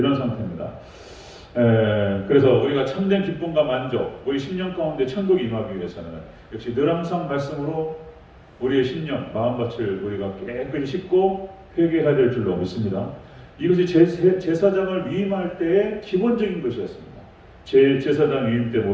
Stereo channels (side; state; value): both; identical; correlation 1.00